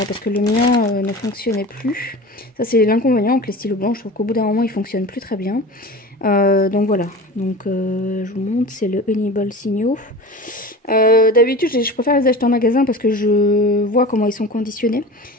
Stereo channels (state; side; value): normal; both; correlation 0.34